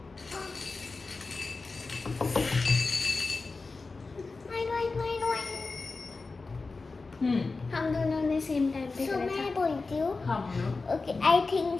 हम दोनों ने सेम टाइम पे So करा मैं था. बोलती हूँ. हाँ बोलो. ओके आई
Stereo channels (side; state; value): right; quieter; 3.9 dB